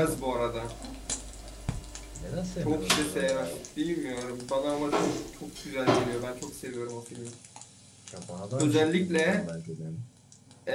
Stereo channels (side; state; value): both; identical; correlation 1.00